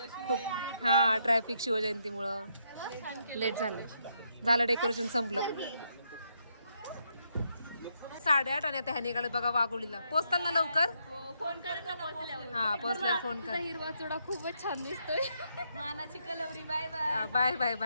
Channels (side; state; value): both; inverted; correlation -0.77